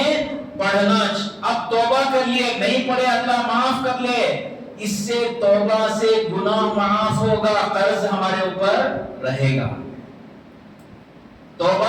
پڑھنا. اب توبہ کر لیے، نہیں پڑھے اللہ معاف کر لے. اس سے توبہ سے گناہ معاف ہوگا، قرض ہمارے اوپر رہے گا.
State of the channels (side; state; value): both; identical; correlation 1.00